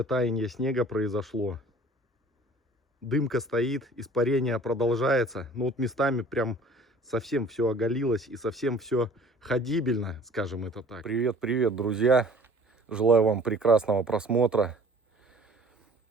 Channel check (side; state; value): both; normal; correlation 0.50